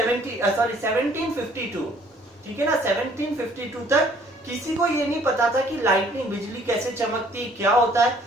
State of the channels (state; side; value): normal; both; correlation 0.59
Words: ठीक है ना, 1752 तक किसी को ये नहीं पता था कि लाइटनिंग, बिजली कैसे चमकती है, क्या होता है.